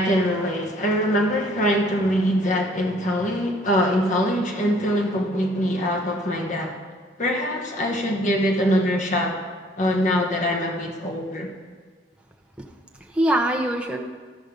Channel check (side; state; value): both; normal; correlation 0.59